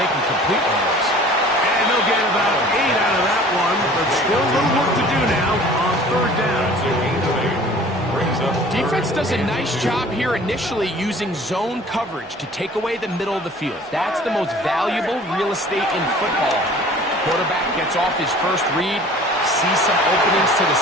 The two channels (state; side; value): normal; both; correlation 0.48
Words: can complete one of those. And they'll get about 8 out of that one, but still a little work to do now on 3rd down. Defense does a nice job here initially using zone coverage to take away the middle of the field. That's the most valuable real estate in football. Quarterback gets off his first read, sees some openings to the